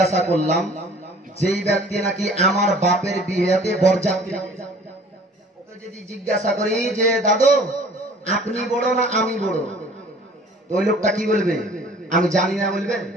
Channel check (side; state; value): both; normal; correlation 0.51